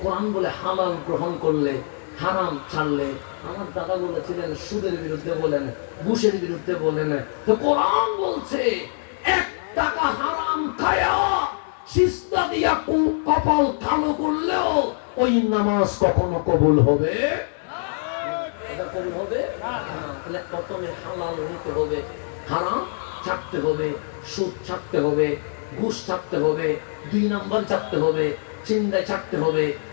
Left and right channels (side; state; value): right; silent; digital silence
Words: কোরআন বলে হালাল গ্রহণ করলে, হারাম ছাড়লে। আমার দাদা বলেছিলেন সুদের বিরুদ্ধে বলেন, ঘুষের বিরুদ্ধে বলেন, তো কোরআন বলছে 1 টাকা হারাম খায়া সিজদা দিয়া কপাল কালো করলেও ওই নামাজ কখনো কবুল হবে? এটা কবুল হবে না। তাহলে প্রথমে হালাল নিতে হবে, হারাম ছাড়তে হবে, সুদ ছাড়তে হবে, ঘুষ ছাড়তে হবে, 2 নাম্বার ছাড়তে হবে, চিন্তায় ছাড়তে হবে,